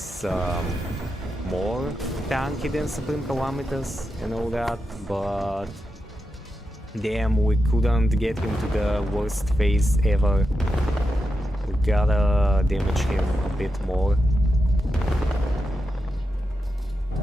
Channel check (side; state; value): both; normal; correlation 0.88